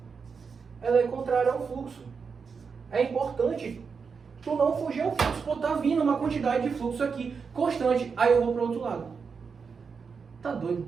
Ela é contrária ao fluxo. É importante tu não fugir ao fluxo. Pô, tá vindo uma quantidade de fluxo aqui, constante. Aí eu vou para o outro lado. Tá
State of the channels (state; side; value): quieter; left; 5.6 dB